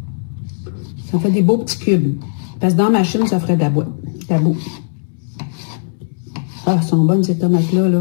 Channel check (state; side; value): silent; right; 68 dB below the other